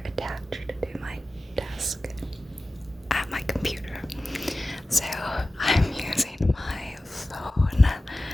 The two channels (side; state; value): both; normal; correlation 0.96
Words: attached to my desk at my computer. So I'm using my phone